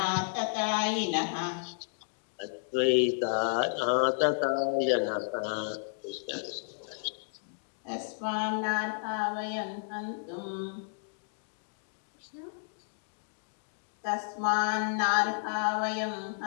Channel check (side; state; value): right; silent; digital silence